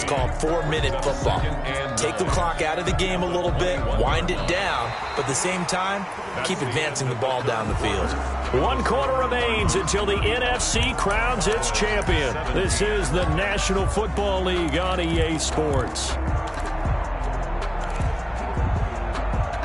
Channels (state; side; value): identical; both; correlation 1.00